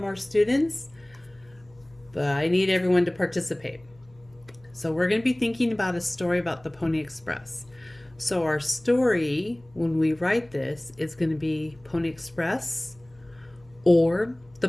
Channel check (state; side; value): noise; left; hum, 28 dB below the sound